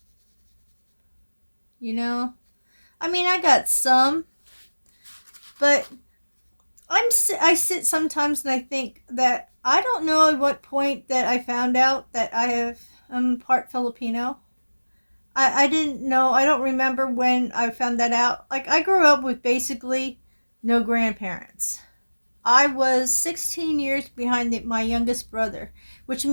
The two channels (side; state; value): both; inverted; correlation -1.00